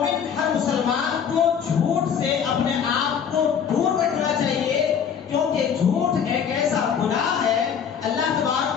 ہر مسلمان کو جھوٹ سے اپنے آپ کو دور رکھنا چاہیے، کیونکہ جھوٹ ایک ایسا گناہ ہے۔ اللہ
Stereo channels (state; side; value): quieter; right; 7.5 dB